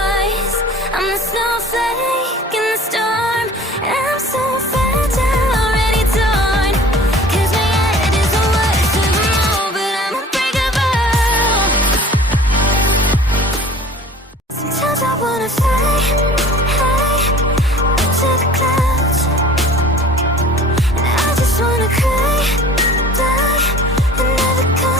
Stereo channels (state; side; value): normal; both; correlation 0.46